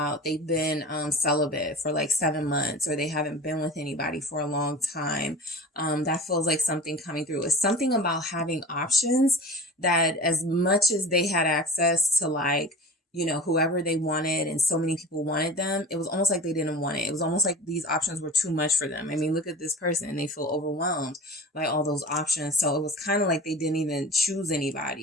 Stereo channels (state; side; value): normal; both; correlation 0.36